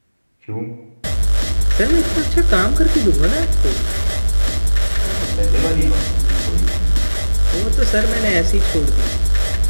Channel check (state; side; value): inverted; both; correlation -1.00